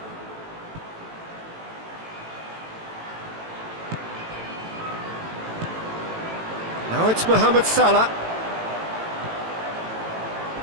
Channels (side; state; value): left; late; 18 ms